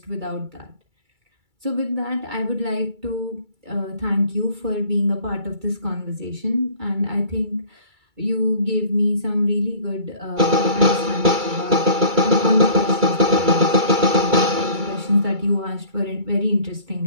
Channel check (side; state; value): left; late; 2.3 ms